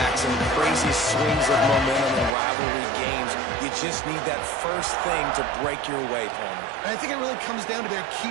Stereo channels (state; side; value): drops out; left; at 2.4 s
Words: and crazy swings of momentum in rivalry games. You just need that first thing to break your way, Palmer. And I think it really comes down to their